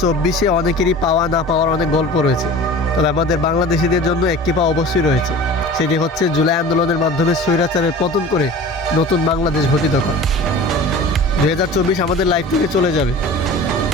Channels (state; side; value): normal; both; correlation 0.39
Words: অনেকেরই পাওয়া না পাওয়ার অনেক গল্প রয়েছে, তবে আমাদের বাংলাদেশিদের জন্য একটি পাওয়া অবশ্যই রয়েছে। সেটি হচ্ছে জুলাই আন্দোলনের মাধ্যমে স্বৈরাচারের পতন করে নতুন বাংলাদেশ গঠিত করা। 2024 আমাদের লাইফ থেকে চলে যাবে,